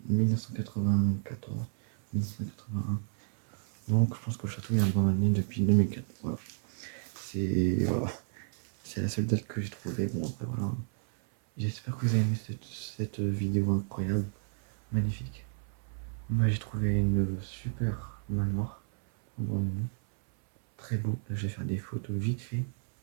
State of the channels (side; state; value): left; silent; 57 dB below the other